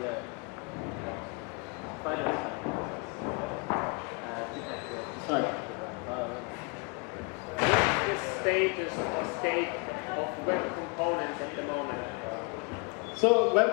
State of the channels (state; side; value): quieter; right; 31.9 dB